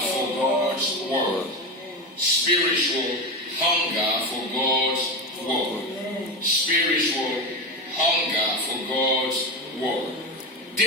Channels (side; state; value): both; normal; correlation 0.18